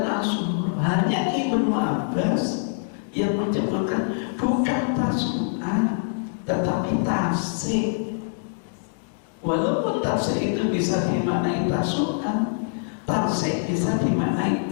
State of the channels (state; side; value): silent; right; digital silence